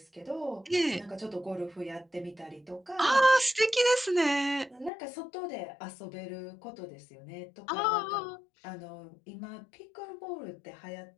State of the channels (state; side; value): drops out; right; at 4.9 s